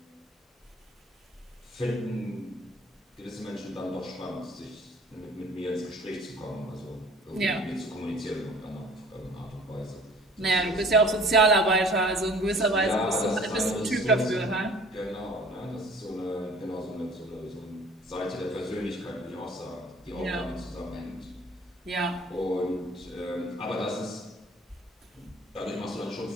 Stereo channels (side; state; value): both; normal; correlation 0.50